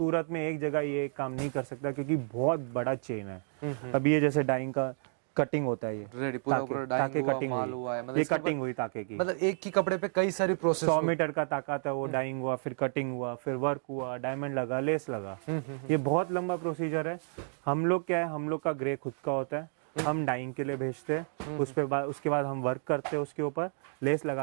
में एक जगह ये काम नहीं कर सकता क्योंकि बहुत बड़ा चेन है। अब ये जैसे डाइंग का कटिंग होता है, ये रेडी पूरा पूरा ताके डाइंग कटिंग हुआ, माल हुई, हुआ है, मतलब ये इसके कटिंग हुई ताके की। मतलब एक ही कपड़े पे कई सारी प्रोसेस 100 मीटर का ताकत है, वो डाइंग हुआ, फिर कटिंग हुआ, फिर वर्क हुआ, डायमंड लगा, लेस लगा। ये बहुत लंबा प्रोसीजर है। हम लोग क्या है, हम लोग का ग्रे खुद का होता है, हम डाइंग के लिए भेजते हैं, उसके बाद हम वर्क करते हैं, उसके ऊपर लेस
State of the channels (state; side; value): silent; left; 57 dB below the other